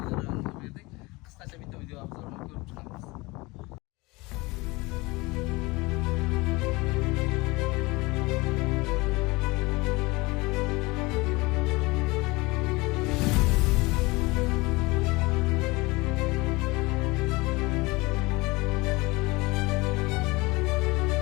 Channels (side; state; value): right; quieter; 23.5 dB